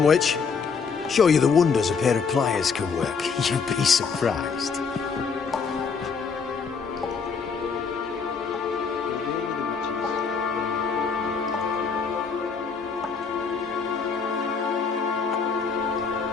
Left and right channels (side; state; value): right; quieter; 5.6 dB